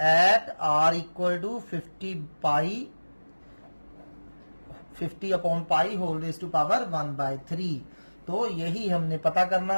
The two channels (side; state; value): both; inverted; correlation -1.00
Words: at r equal to 50/π⁻⁴ तो यही हमने पता करना